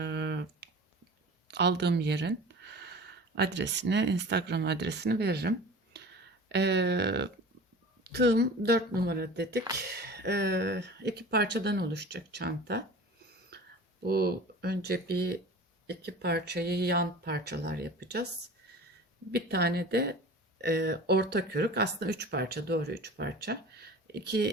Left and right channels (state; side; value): normal; both; correlation 0.39